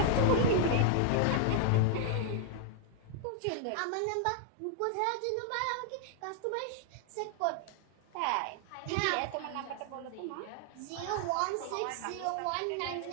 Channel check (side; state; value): both; different; correlation 0.00